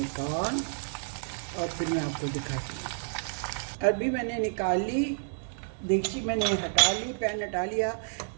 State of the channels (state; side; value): silent; left; 58 dB below the other